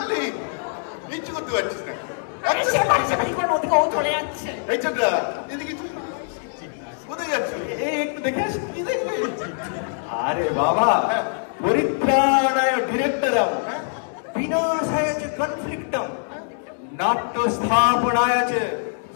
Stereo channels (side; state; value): right; silent; digital silence